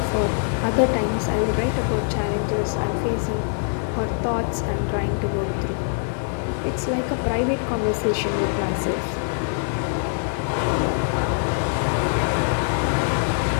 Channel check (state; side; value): silent; right; digital silence